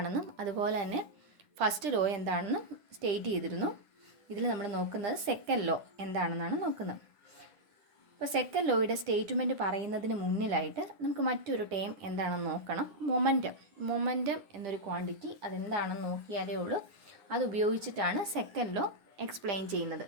അതുപോലെ തന്നെ ഫസ്റ്റ് ലോ എന്താണെന്നും സ്റ്റേറ്റ് ചെയ്തിരുന്നു. ഇതിൽ നമ്മൾ നോക്കുന്നത് സെക്കൻഡ് ലോ എന്താണെന്നാണ് നോക്കുന്നത്. അപ്പോൾ സെക്കൻഡ് ലോയുടെ സ്റ്റേറ്റ്മെൻറ്റ് പറയുന്നതിന് മുന്നിലായിട്ട് നമുക്ക് മറ്റൊരു ടേം എന്താണെന്ന് നോക്കണം. മൊമെൻറ്റം എന്നൊരു ക്വാണ്ടിറ്റി അതെന്താണെന്ന് നോക്കിയാലേ ഉള്ളൂ. അത് ഉപയോഗിച്ചിട്ടാണ് സെക്കൻഡ് ലോ എക്സ്പ്ലെയിൻ ചെയ്യുന്നത്.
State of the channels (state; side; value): late; left; 9.9 ms